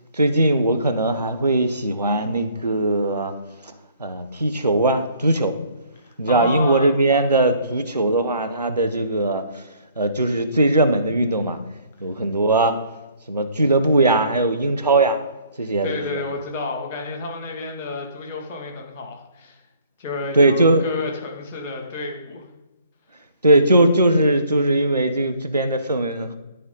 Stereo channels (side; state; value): both; inverted; correlation -0.59